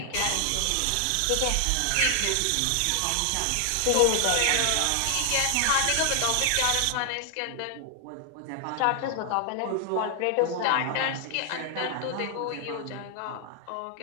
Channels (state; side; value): different; both; correlation 0.00